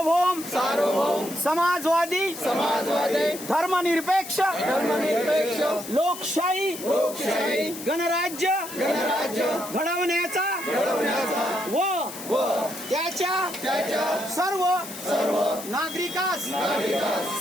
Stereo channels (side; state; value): left; noise; hiss, 12 dB below the sound